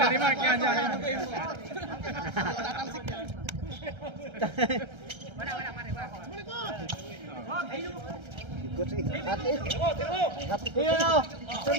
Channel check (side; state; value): left; late; 1.3 ms